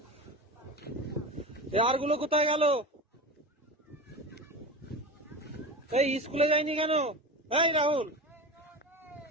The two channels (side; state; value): both; normal; correlation 0.28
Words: আর গুলো কোথায় গেল? এই স্কুলে যায়নি কেন? এই রাহুল,